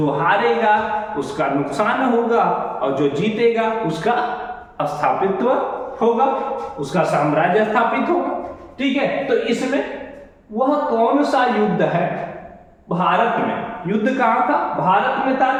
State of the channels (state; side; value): identical; both; correlation 1.00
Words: हारेगा उसका नुकसान होगा और जो जीतेगा उसका स्थापित्व होगा, उसका साम्राज्य स्थापित होगा। ठीक है, तो इसमें वह कौन सा युद्ध है? भारत में युद्ध कहां था? भारत में था,